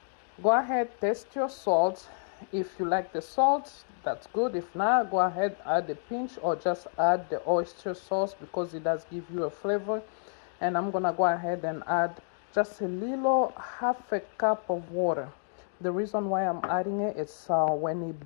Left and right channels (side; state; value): right; silent; digital silence